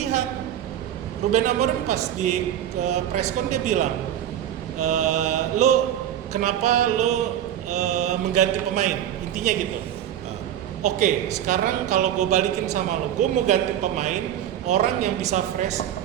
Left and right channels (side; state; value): left; quieter; 10.8 dB